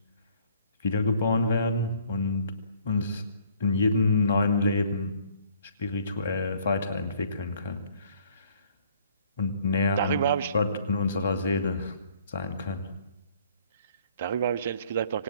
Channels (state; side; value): inverted; both; correlation -0.59